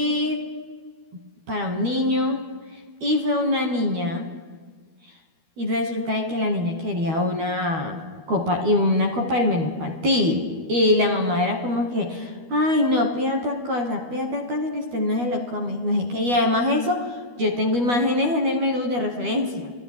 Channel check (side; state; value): left; late; 12 ms